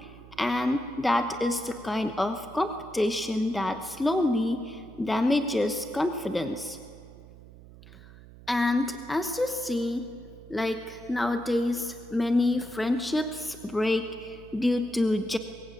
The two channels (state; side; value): noise; right; hum, 19 dB below the sound